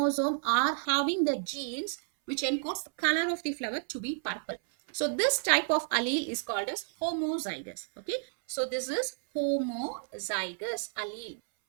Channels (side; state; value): left; silent; 57 dB below the other